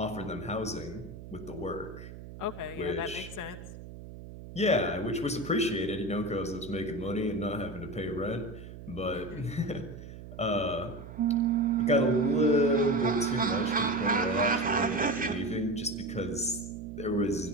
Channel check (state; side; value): noise; right; hum, 13 dB below the sound